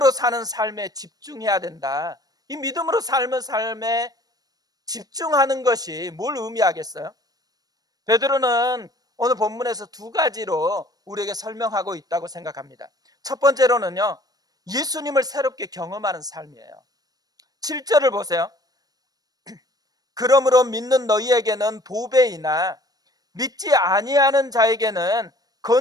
사는 삶에 집중해야 된다, 이 믿음으로 삶은 삶에 집중하는 것이 뭘 의미하겠어요? 베드로는 오늘 본문에서 두 가지로 우리에게 설명하고 있다고 생각합니다. 첫 번째로는요, 예수님을 새롭게 경험하는 삶이에요. 7절을 보세요. 그러므로 믿는 너희에게는 보배이나 믿지 아니하는 자에게는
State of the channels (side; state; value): left; late; 0.19 ms